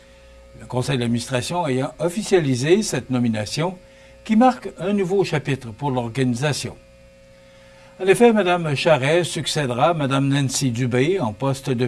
Le conseil d'administration ayant officialisé cette nomination qui marque un nouveau chapitre pour l'organisation. En effet, Mme Charret succédera à Mme Nancy Dubé en poste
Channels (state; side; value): identical; both; correlation 1.00